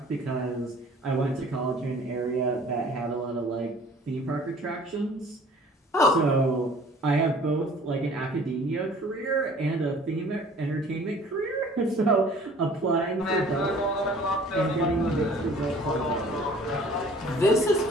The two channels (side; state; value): both; normal; correlation 0.51